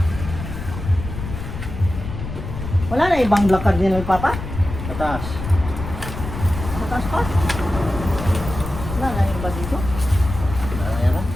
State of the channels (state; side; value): noise; left; rumble, 8 dB below the sound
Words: Wala na ibang black cardinal, Papa? Tatas. Mataas pa? Wala na yung iba dito? Ayan na.